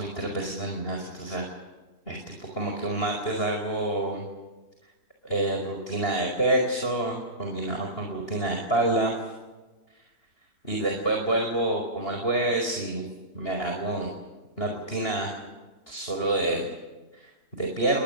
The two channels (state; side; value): late; right; 2.8 ms